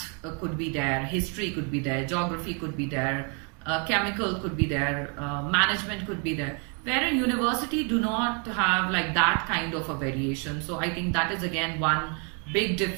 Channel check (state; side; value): quieter; left; 36.8 dB